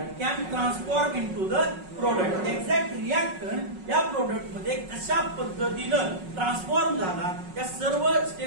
can transform into the product. Exact reactant या प्रोडक्ट मध्ये कशा पद्धतीनं ट्रान्सफॉर्म झाला, या सर्व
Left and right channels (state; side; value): late; left; 5.4 ms